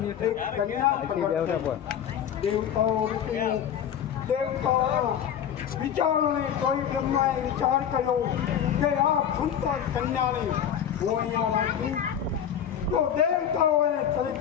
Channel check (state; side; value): quieter; right; 9.0 dB